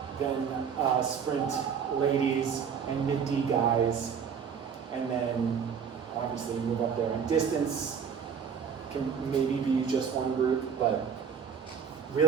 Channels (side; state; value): left; quieter; 7.0 dB